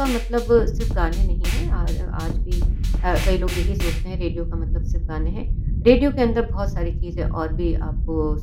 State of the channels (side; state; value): both; identical; correlation 1.00